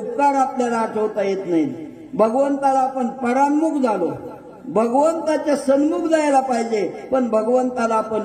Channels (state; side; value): identical; both; correlation 1.00